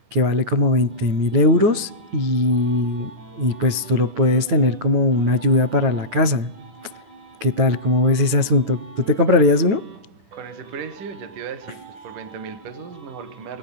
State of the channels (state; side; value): late; left; 9.3 ms